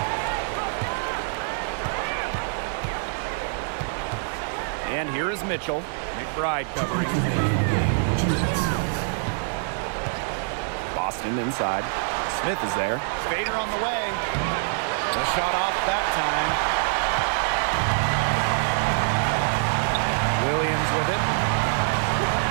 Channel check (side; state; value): left; silent; 62 dB below the other